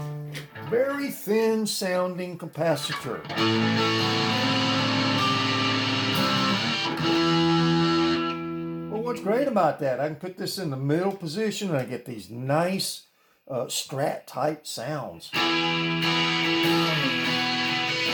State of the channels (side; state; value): both; identical; correlation 1.00